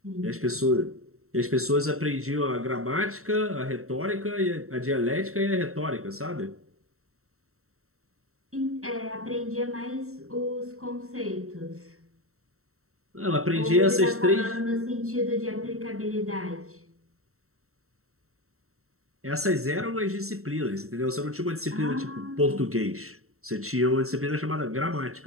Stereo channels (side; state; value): left; late; 0.63 ms